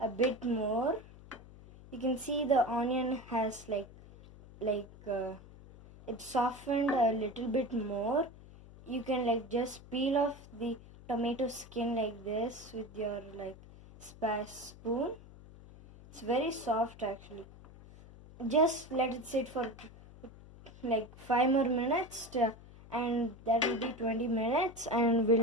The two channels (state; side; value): noise; left; hum, 19 dB below the sound